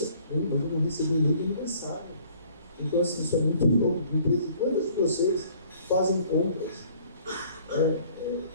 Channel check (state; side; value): inverted; both; correlation -0.57